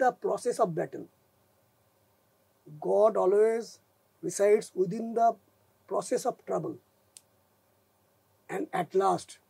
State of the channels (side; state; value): both; identical; correlation 1.00